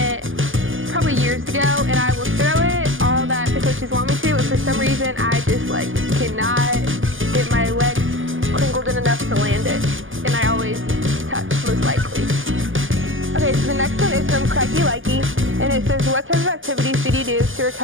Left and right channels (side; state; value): left; late; 0.58 ms